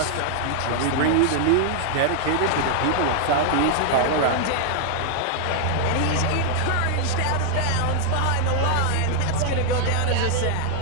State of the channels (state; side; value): different; both; correlation 0.00